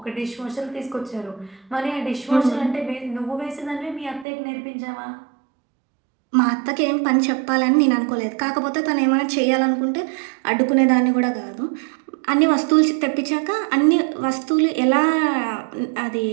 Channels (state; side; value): drops out; left; at 4.2 s